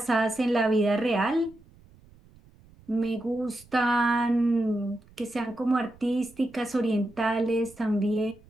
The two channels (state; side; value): noise; right; rumble, 26 dB below the sound